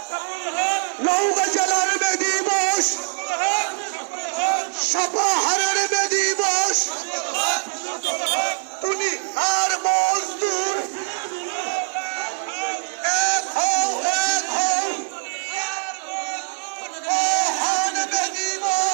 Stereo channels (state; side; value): silent; left; 60 dB below the other